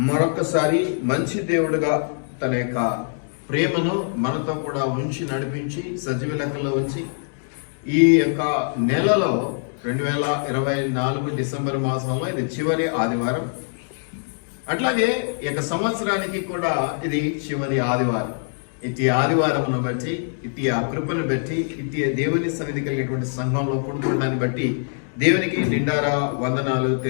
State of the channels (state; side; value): silent; right; digital silence